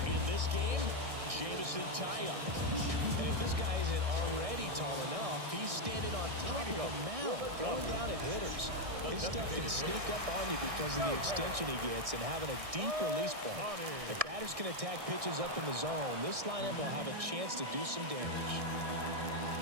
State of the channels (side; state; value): left; late; 1.6 ms